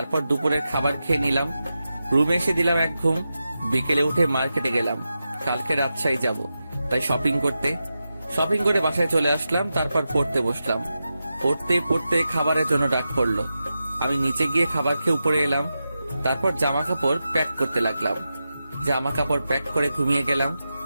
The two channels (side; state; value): both; inverted; correlation -0.91